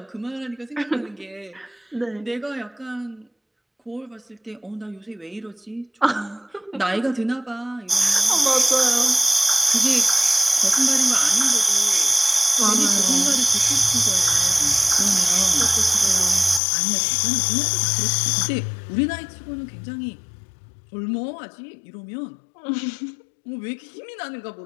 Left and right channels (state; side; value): drops out; right; at 16.6 s